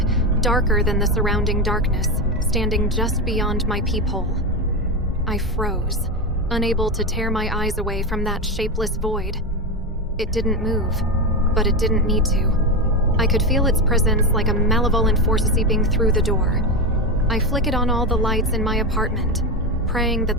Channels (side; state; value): both; normal; correlation 0.14